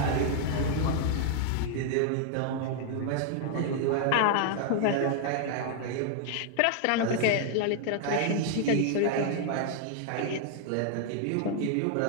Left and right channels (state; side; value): different; both; correlation -0.01